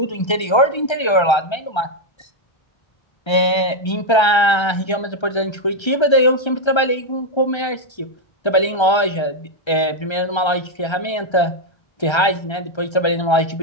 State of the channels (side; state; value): right; late; 1.3 ms